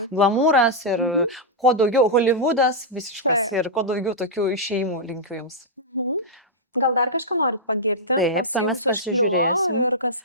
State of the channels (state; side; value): normal; both; correlation -0.07